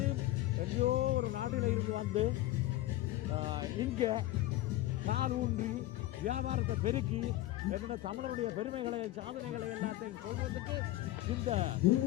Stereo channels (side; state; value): right; quieter; 16.1 dB